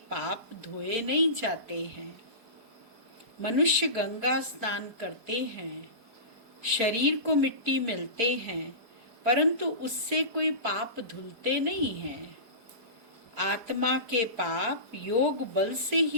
पाप धोए नहीं जाते हैं। मनुष्य गंगा स्नान करते हैं, शरीर को मिट्टी मिलते हैं, परंतु उससे कोई पाप धुलते नहीं हैं। आत्मा के पाप योग बल से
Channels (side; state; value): left; late; 4.8 ms